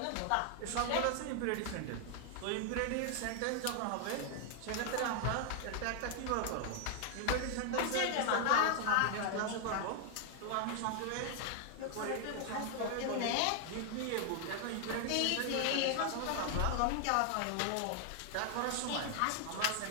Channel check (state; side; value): different; both; correlation 0.00